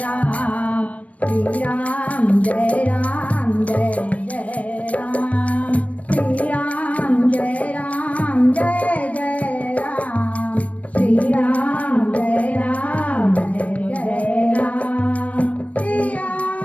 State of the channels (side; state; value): right; late; 0.066 ms